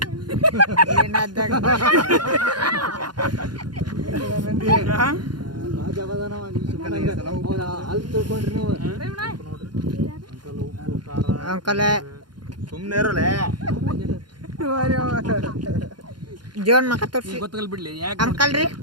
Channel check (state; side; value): late; left; 0.71 ms